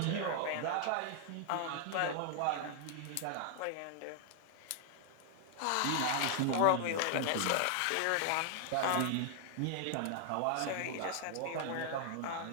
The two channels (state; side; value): different; both; correlation 0.00